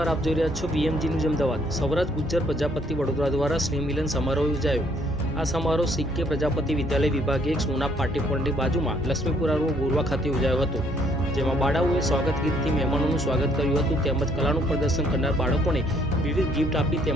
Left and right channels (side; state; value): both; normal; correlation 0.66